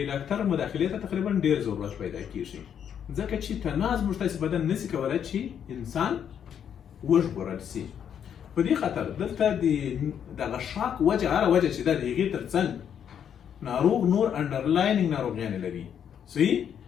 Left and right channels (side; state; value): right; quieter; 8.6 dB